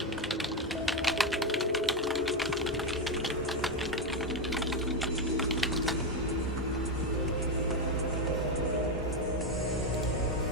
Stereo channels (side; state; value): both; normal; correlation 0.09